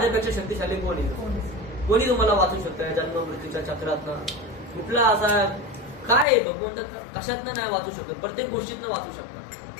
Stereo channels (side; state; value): right; drops out; at 6.2 s